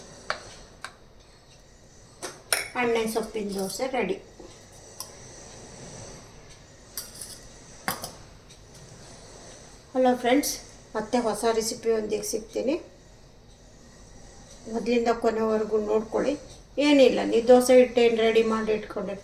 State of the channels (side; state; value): both; identical; correlation 1.00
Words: ಎಣ್ಣೆ ಸೊಪ್ಪಿನ ದೋಸೆ ರೆಡಿ. ಹಲೋ ಫ್ರೆಂಡ್ಸ್, ಮತ್ತೆ ಹೊಸ ರೆಸಿಪಿಯೊಂದಿಗೆ ಸಿಗ್ತೀನಿ. ಮೊದಲಿಂದ ಕೊನೆವರೆಗೂ ನೋಡ್ಕೊಳ್ಳಿ. ಏನಿಲ್ಲ, ನೀವು ದೋಸೆ ಹಿಟ್ಟೇನು ರೆಡಿ ಮಾಡಿ